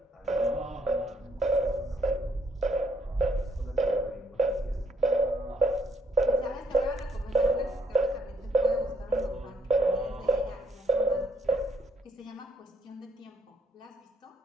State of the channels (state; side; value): normal; both; correlation 0.71